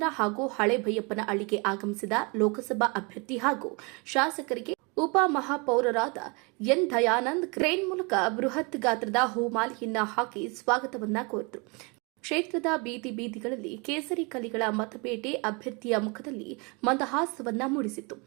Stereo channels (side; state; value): left; quieter; 30.3 dB